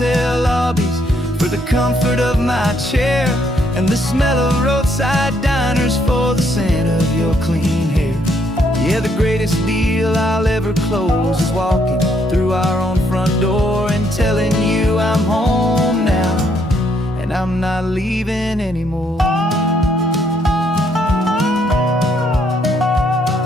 lobbies for the comfort of my chair and the smell of roadside diners for the scent of your clean hair. Yeah, the greatest deal I'll ever close is walking through our own front door and telling you I'm home now, and I'm not leaving anymore.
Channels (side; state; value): both; normal; correlation 0.71